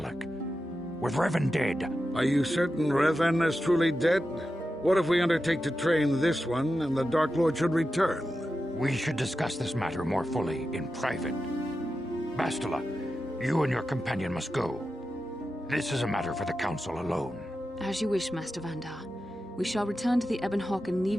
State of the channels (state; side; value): normal; both; correlation 0.91